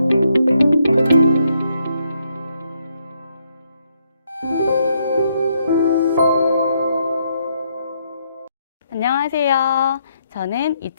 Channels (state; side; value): inverted; both; correlation -0.76